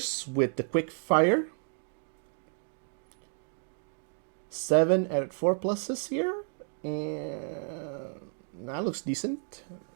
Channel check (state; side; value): silent; left; 57 dB below the other